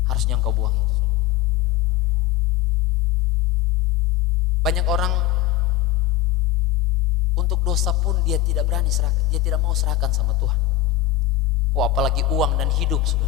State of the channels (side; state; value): right; quieter; 12.2 dB